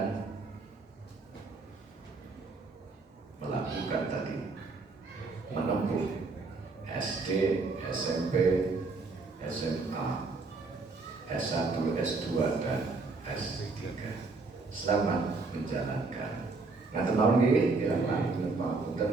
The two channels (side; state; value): left; quieter; 3.9 dB